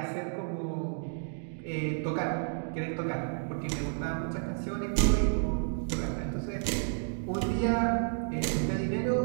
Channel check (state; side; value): silent; left; digital silence